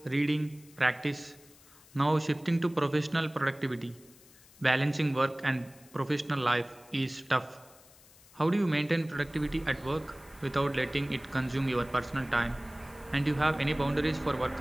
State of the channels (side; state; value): left; noise; hiss, 25 dB below the sound